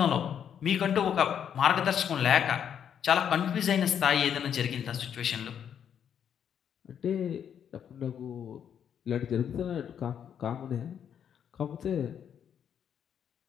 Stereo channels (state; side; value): quieter; right; 8.6 dB